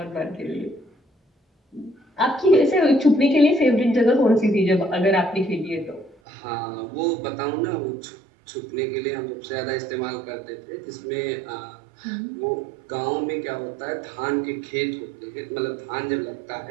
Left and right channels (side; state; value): left; drops out; at 6.2 s